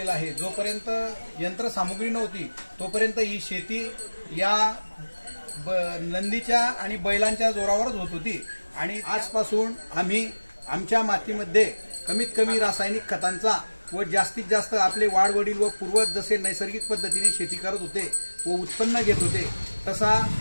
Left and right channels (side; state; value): both; inverted; correlation -1.00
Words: आहे। जोपर्यंत यंत्रसामुग्री नव्हती तोपर्यंत ही शेती या नंदीच्या आणि बैलांच्या जोरावरच होत होती। आणि आजपासून आम्ही आमच्या मातीमध्ये कमीत कमी रासायनिक खतांचा व जास्तीत जास्त आपले वाडवडील व पूर्वज जसे नैसर्गिक पद्धतीने शेती करत होते व उत्पन्न घेत होते, तसा